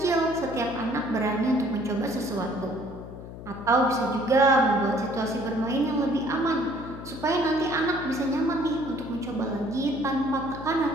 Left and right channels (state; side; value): noise; left; hum, 12 dB below the sound